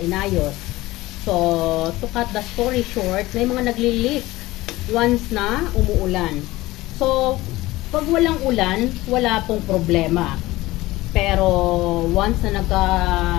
inayos? So, to cut the story short, may mga nagli-leak once na umuulan. So, pag walang ulan, wala pong problema. Pero, once na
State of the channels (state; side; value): quieter; right; 18.5 dB